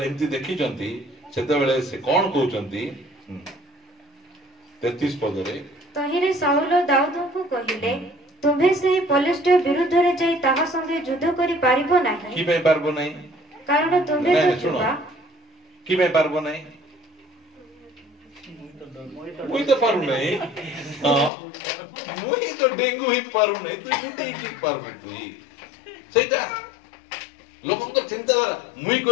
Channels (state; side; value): drops out; right; at 21.3 s